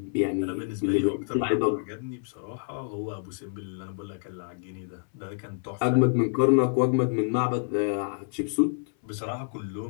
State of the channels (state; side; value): silent; right; 59 dB below the other